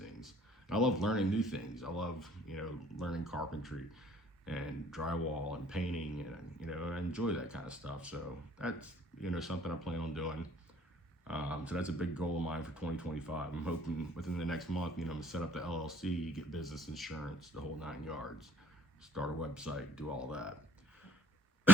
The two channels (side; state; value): both; normal; correlation 0.57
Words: And I love learning new things. I love, you know, learning carpentry and drywall and painting, and, you know, I enjoy that kind of stuff. So that's, you know, something I plan on doing. So that's a big goal of mine for 2025. I'm hoping within the next month, you know, I'm gonna set up the LLC, get business insurance, the whole 9 yards, start a website, do all that.